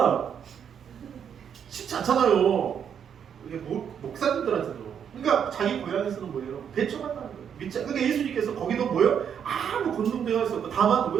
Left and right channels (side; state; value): left; quieter; 8.1 dB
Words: 쉽지 않잖아요. 이게 목사님들한테도. 그러니까 자기 고향에서는 뭐예요? 배척한다는 거예요. 그러니까 예수님께서 거기도 뭐예요? 아무 권능도 행할 수 없고 다만